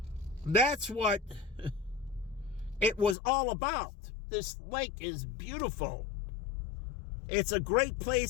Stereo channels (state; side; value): drops out; right; at 3.2 s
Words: That's what it was all about. This lake is beautiful. It's a great